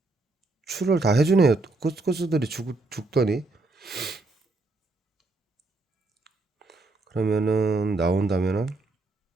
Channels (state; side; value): quieter; left; 3.2 dB